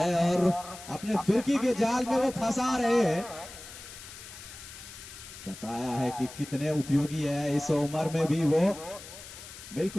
और अपने फिरकी के जाल में वो फंसा रहे हैं। बताया है कि कितने उपयोगी है इस उम्र में भी वो।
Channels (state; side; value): noise; left; hiss, 15 dB below the sound